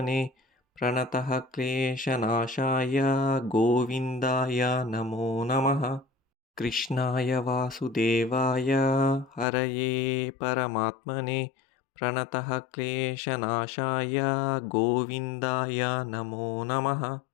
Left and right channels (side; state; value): right; drops out; at 9.5 s